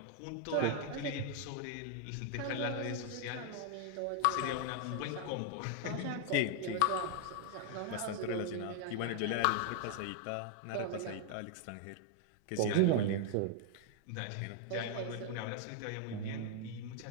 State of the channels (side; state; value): both; different; correlation 0.00